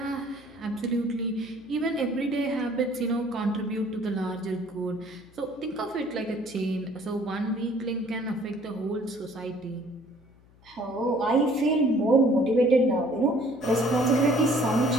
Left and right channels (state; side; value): noise; left; hum, 28 dB below the sound